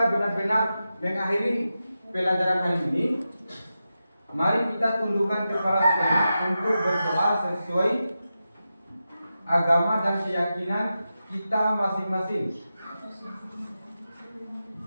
benar-benar mengakhiri pelajaran hari ini, mari kita tundukkan kepala sejenak untuk berdoa sesuai agama dan keyakinan kita masing-masing.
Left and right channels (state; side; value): inverted; both; correlation -0.91